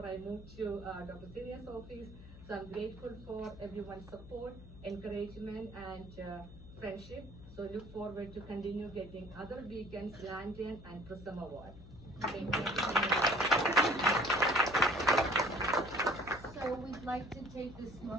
I moved to Dr. Siria's office. So I'm grateful for everyone's support, encouragement, and friendship. So look forward to continue getting other beacons, lantern, and Prism Award. Thank you. So we'd like to take this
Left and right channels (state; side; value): noise; left; hum, 17 dB below the sound